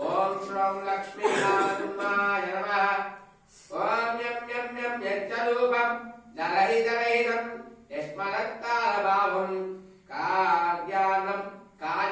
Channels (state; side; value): identical; both; correlation 1.00